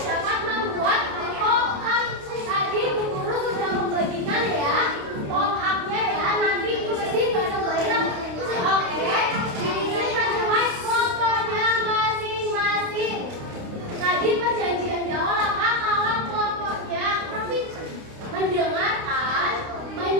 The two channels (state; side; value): late; left; 29 ms